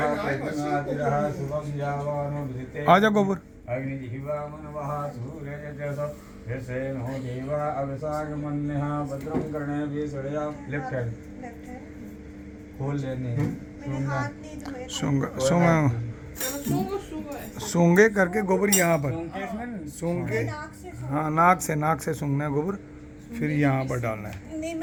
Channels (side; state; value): both; identical; correlation 1.00